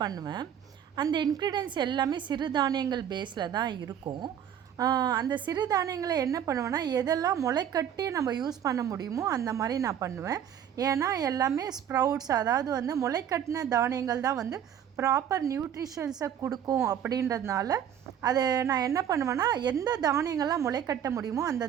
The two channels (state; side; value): quieter; left; 9.4 dB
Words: அந்த இன்க்ரீடியன்ஸ் எல்லாமே சிறுதானியங்கள் பேஸில் தான் இருக்கும். அந்த சிறுதானியங்களை என்ன பண்ணுவேன்னா, எதெல்லாம் முளைக்கட்டி நம்ம யூஸ் பண்ண முடியுமோ அந்த மாதிரி நான் பண்ணுவேன். ஏன்னா எல்லாமே ஸ்ப்ரவுட்ஸ், அதாவது வந்து முளைக்கட்டின தானியங்கள் தான் வந்து ப்ராப்பர் நியூட்ரிஷன்ஸை கொடுக்கும். அப்படின்றதுனால அதை நான் என்ன பண்ணுவேன்னா, எந்த தானியங்கள்லாம் முளைக்கட்ட முடியுமோ அந்த